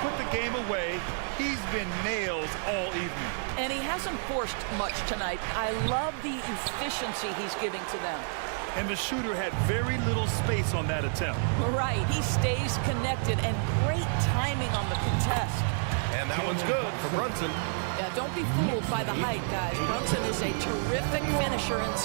put the game away, he's been nails all evening. And he hasn't forced much tonight. I love the efficiency he's giving to them. And the shooter had very little space on that attempt. Right, he stays connected and great timing on the contest. And that one's good for Brunson. Yeah, don't be fooled by the height, guys. Brunson is a terrific finisher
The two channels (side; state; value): left; silent; 58 dB below the other